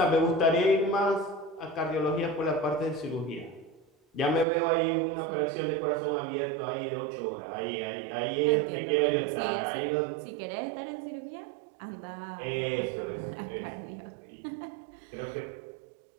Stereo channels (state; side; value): drops out; left; at 4.5 s